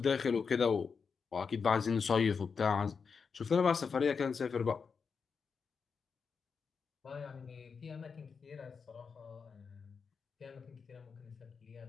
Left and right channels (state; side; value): quieter; right; 5.6 dB